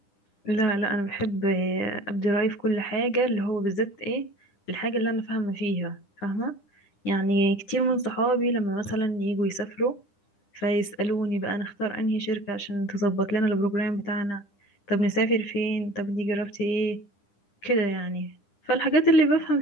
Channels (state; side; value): late; right; 9.9 ms